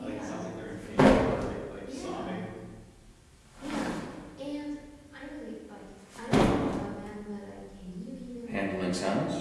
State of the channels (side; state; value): both; identical; correlation 1.00